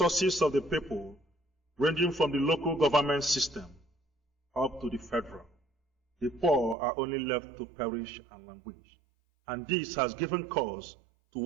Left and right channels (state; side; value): drops out; left; at 6.8 s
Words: of the people, ranging from the local government system up to the federal. The poor are only left to perish and languish. And this has given cause to